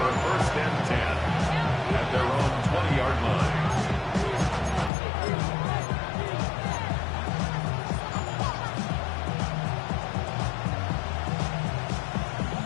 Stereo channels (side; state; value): right; drops out; at 4.9 s